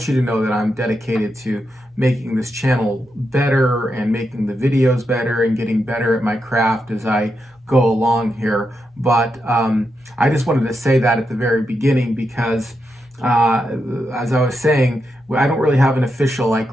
you to know that I'm dedicated to making this channel better and making the videos better and getting better at my craft as I go along here. But I just wanted to say that at the very beginning because as I was saying, I don't really have an official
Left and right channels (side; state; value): both; normal; correlation 0.85